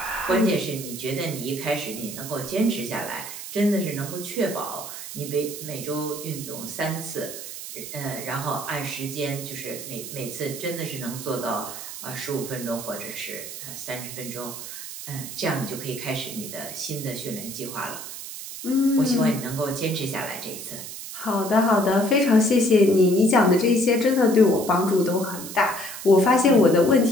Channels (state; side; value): noise; right; hiss, 10 dB below the sound